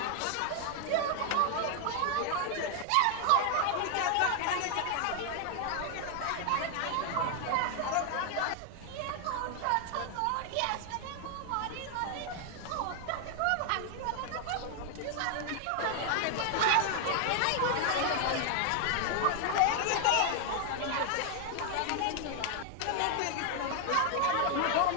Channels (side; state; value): both; different; correlation 0.00